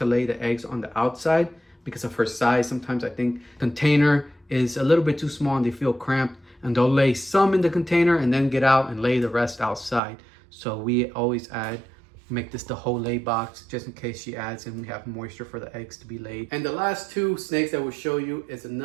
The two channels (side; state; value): left; drops out; at 10.0 s